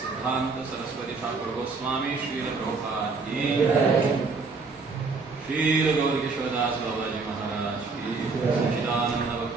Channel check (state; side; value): quieter; left; 4.3 dB